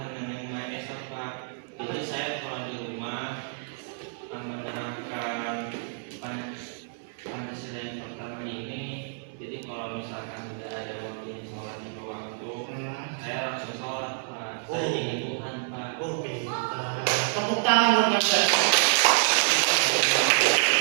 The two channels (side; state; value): left; silent; digital silence